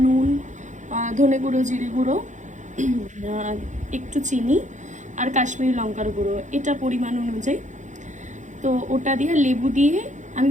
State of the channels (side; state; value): left; late; 0.35 ms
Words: নুন, ধনে গুঁড়ো, জিরে গুঁড়ো, একটু চিনি আর কাশ্মীরি লঙ্কার গুঁড়ো, এটা পরিমাণ অনুযায়ী। তো ওটা দিয়ে লেবু দিয়ে আমি